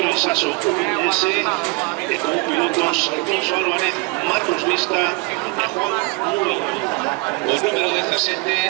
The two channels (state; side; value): quieter; left; 27.5 dB